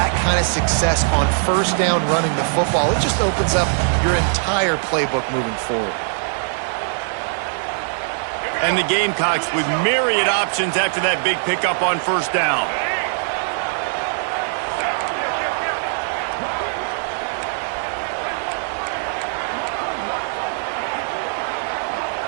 kind of success on first down running the football, it just opens up your entire playbook moving forward. And the Gamecocks with myriad options after that big pickup on first down.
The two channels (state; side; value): silent; left; 65 dB below the other